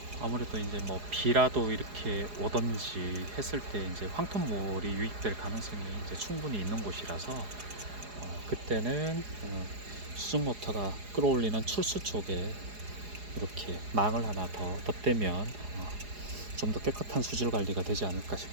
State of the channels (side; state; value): left; late; 4.8 ms